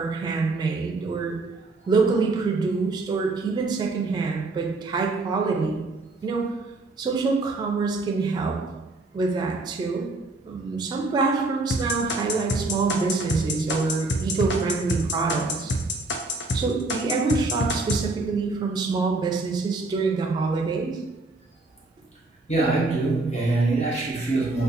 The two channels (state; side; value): quieter; left; 3.2 dB